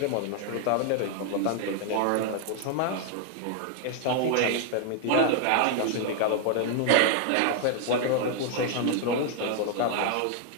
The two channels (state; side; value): different; both; correlation 0.00